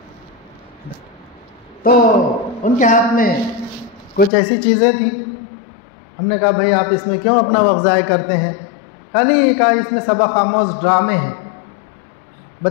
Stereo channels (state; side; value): drops out; right; at 4.3 s